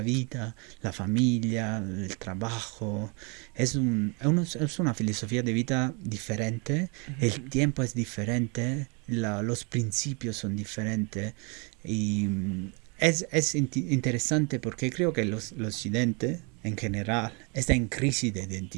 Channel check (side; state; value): left; quieter; 32.3 dB